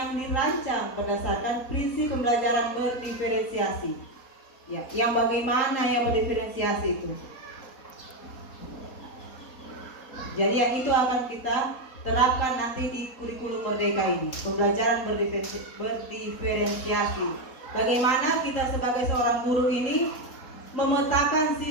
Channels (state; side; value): late; right; 4.2 ms